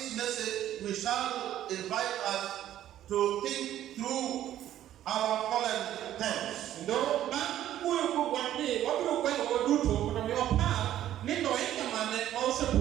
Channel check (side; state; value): left; quieter; 12.2 dB